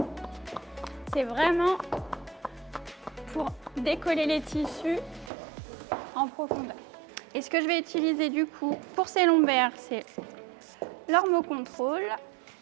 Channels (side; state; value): left; drops out; at 5.3 s